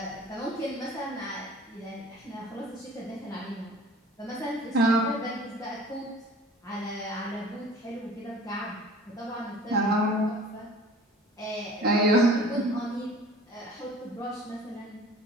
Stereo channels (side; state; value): both; normal; correlation 0.46